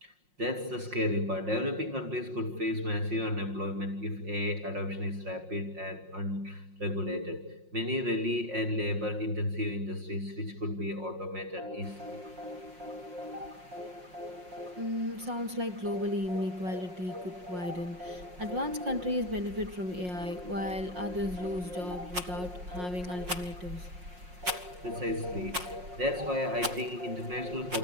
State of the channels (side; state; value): left; late; 5.6 ms